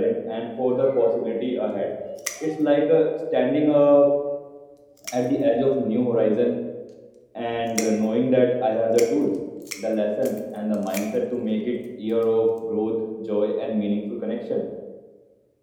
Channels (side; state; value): both; identical; correlation 1.00